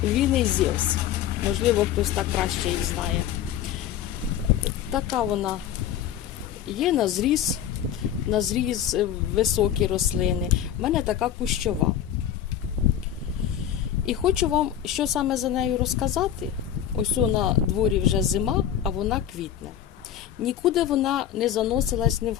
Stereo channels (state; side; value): quieter; right; 10.3 dB